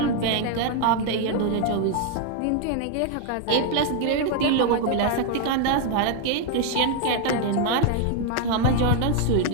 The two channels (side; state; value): both; different; correlation 0.00